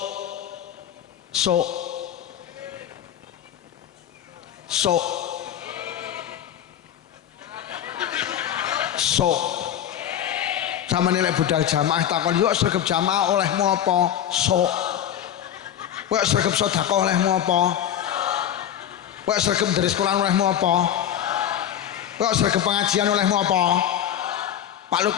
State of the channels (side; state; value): right; quieter; 10.3 dB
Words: Samane lek budal jamaah takon yo sregep jamaah olehmu apa? Sok. Kowe sregep sedekah olehmu apa? Kowe sregep ndheres Quran olehmu apa? Kowe sregep pengajian olehmu apa? Pak